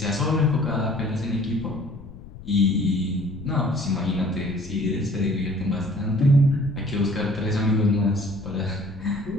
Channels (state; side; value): noise; left; rumble, 16 dB below the sound